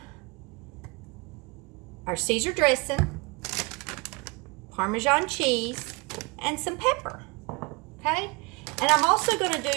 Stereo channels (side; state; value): left; quieter; 27.0 dB